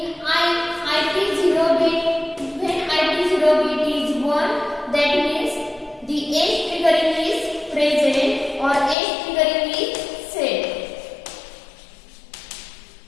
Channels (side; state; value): right; drops out; at 9.0 s